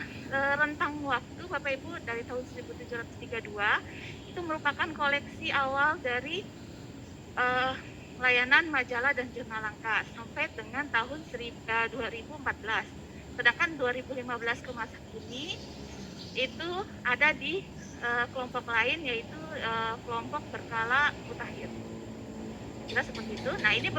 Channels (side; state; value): both; identical; correlation 1.00